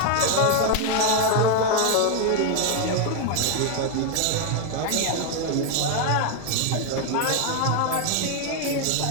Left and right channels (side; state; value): both; different; correlation 0.01